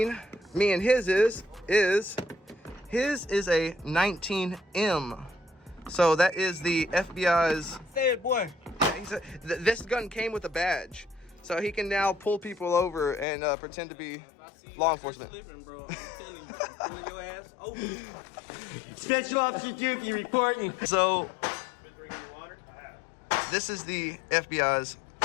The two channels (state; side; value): drops out; right; at 13.2 s